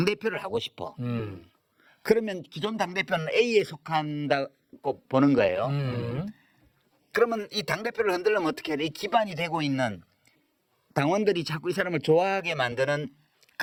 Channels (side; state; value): both; identical; correlation 1.00